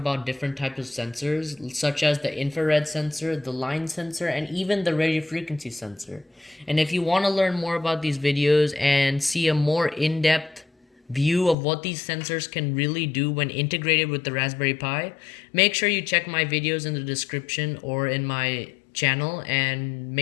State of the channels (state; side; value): drops out; right; at 11.6 s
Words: different types of sensors, such as the infrared sensor, the line sensor, and even the radio frequency sensor. And if you want to learn more about these videos and see a more in-depth view of what these sensors can really do when integrated with the Raspberry Pi, make sure you check my videos in the description or in my channel and